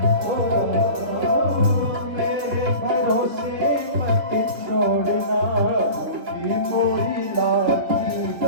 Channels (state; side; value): late; left; 3.1 ms